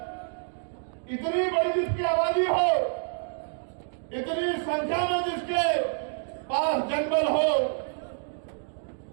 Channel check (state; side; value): silent; left; digital silence